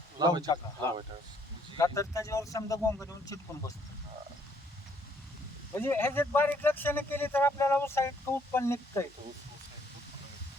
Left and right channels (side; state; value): both; normal; correlation 0.67